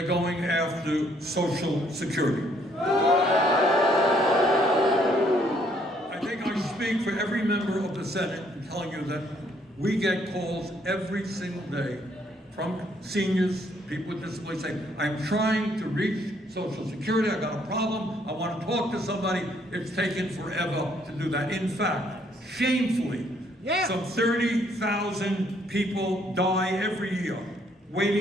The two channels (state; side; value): normal; both; correlation 0.67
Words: going after Social Security. I think I speak for every member of the Senate in telling you that We get calls every single day from seniors, people with disabilities saying, I'm trying to reach Social Security, I got a problem, I want to talk to somebody. It's taken forever to do that. In fact, shamefully, some 30,000 people die every year